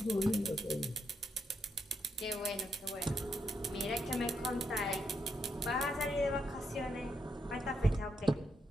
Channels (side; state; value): both; normal; correlation 0.79